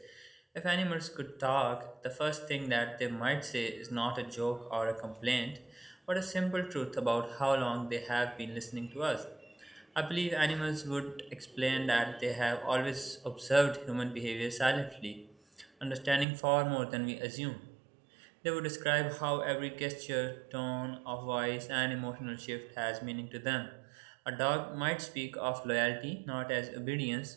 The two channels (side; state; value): left; drops out; at 16.2 s